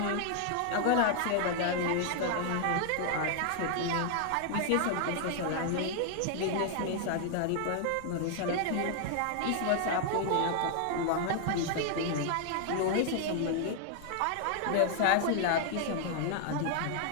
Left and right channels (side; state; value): both; different; correlation 0.00